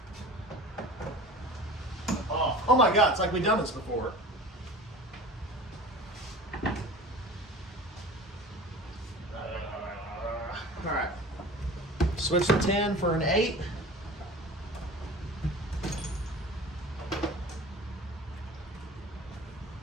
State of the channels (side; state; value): both; normal; correlation 0.39